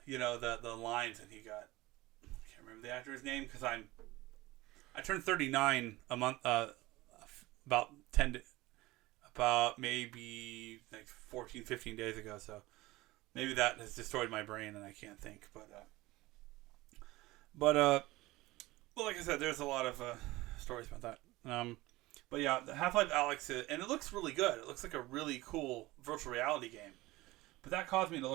the lines, and I can't remember the actor's name because I turned 39 a month, about about maybe like 14, 15 days ago. So maybe that has destroyed my brain and I can't think. Well, like I said, there's a lot of stories about that. But yeah, the Half-Life Alyx, and it looks really good. It looks like a really cool virtual reality game. But that caused me to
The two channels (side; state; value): left; quieter; 19.4 dB